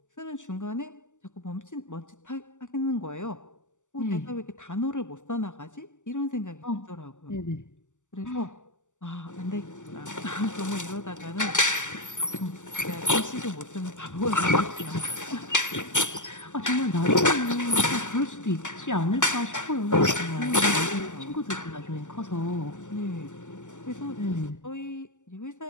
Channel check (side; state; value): right; late; 0.85 ms